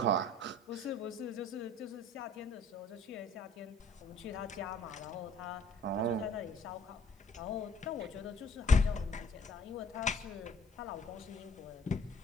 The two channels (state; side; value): normal; both; correlation 0.57